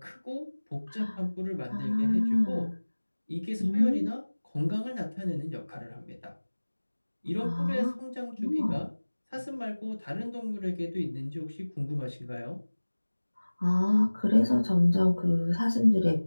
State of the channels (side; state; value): both; inverted; correlation -1.00